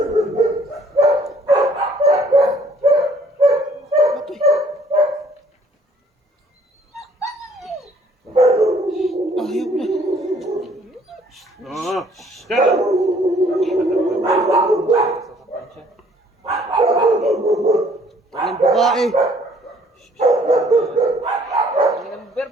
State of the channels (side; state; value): both; normal; correlation 0.60